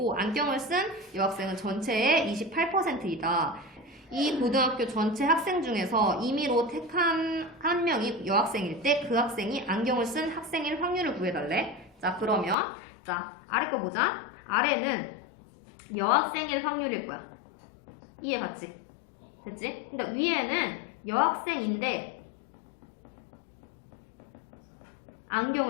안경을 쓴 여학생은 전체의 28%이다. 이 고등학교 전체 학생 중에서 임의로 택한 한 명이 여학생일 때 그 학생이 안경을 쓴 학생일 확률을 구해달래. 자, 그러면 자, 아래 거 보자. 아래는 여학생일 확률일 거야. 이해 갔지? 됐지? 근데 위에는 여학생인데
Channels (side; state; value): right; drops out; at 12.6 s